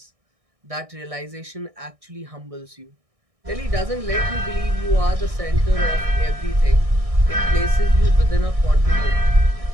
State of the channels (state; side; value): late; left; 1.6 ms